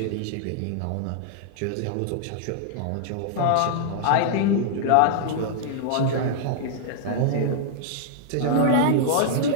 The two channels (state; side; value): different; both; correlation -0.01